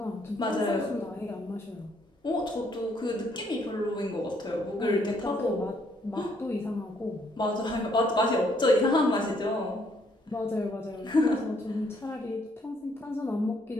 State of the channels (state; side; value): normal; both; correlation 0.69